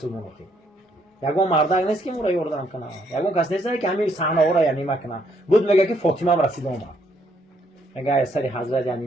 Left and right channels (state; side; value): normal; both; correlation 0.71